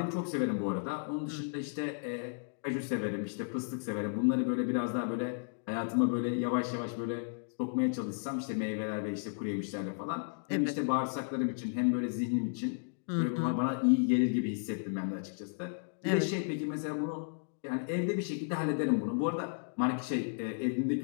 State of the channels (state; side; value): silent; right; digital silence